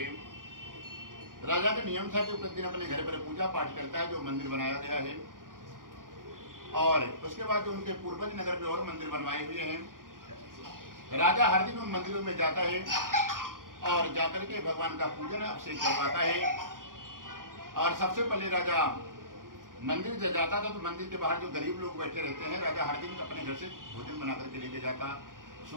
राजा का नियम था कि प्रतिदिन अपने घर पर पूजा पाठ करता है, जो मंदिर बनाया गया है, और उसके बाद जो उनके पूर्वज नगर में और मंदिर बनवाए हुए हैं। राजा हर दिन उन मंदिरों में जाता है और जाकर के भगवान का पूजन अभिषेक करवाता है। और सबसे पहले राजा मंदिर जब जाता था तो मंदिर के बाहर जो गरीब लोग बैठे रहते हैं, राजा हर दिन अपने घर से भोजन बना करके लेके जाता,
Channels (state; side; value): late; left; 0.90 ms